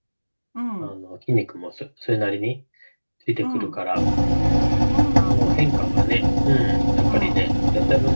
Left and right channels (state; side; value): inverted; both; correlation -1.00